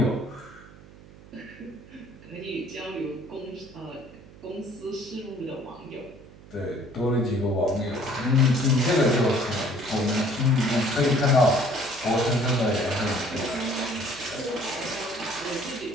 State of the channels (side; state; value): right; noise; hum, 21 dB below the sound